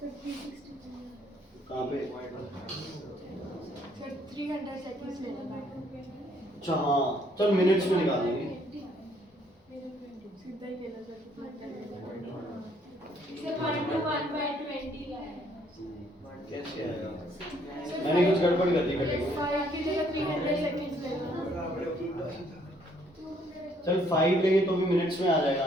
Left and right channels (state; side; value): normal; both; correlation 0.66